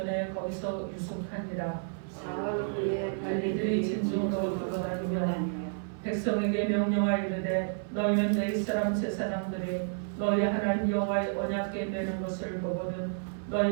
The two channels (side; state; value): left; silent; 57 dB below the other